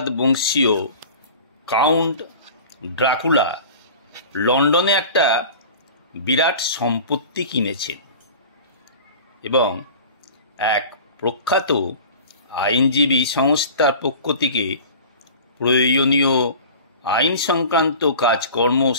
বংশীয় কাউন্ট ড্রাকুলা লন্ডনে একটা বিরাট সম্পত্তি কিনেছেন এবং এক প্রখ্যাত আইনজীবী সংস্থার পক্ষ থেকে প্রয়োজনীয় আইন সংক্রান্ত কাজকর্ম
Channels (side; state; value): both; inverted; correlation -0.39